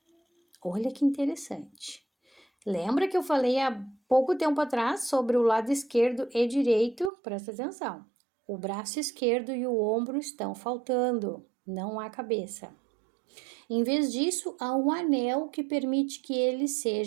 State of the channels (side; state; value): left; drops out; at 7.1 s